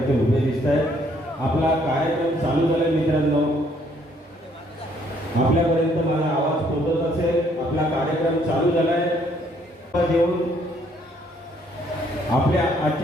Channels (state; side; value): normal; both; correlation 0.66